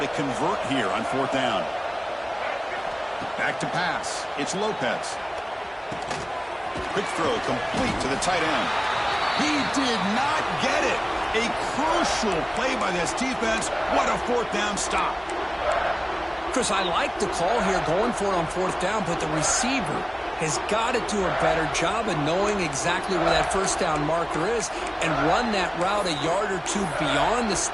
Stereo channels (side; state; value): both; identical; correlation 1.00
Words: to convert here on 4th down. Back to pass. It's Lopez. Quick throw complete to the tight end. He did not get it. A crucial play by this defense. What a 4th down stop. Chris, I like the call here going for it on 4th down, but the receiver has got to do a better job of knowing exactly where that first down marker is and run that route a yard or two beyond the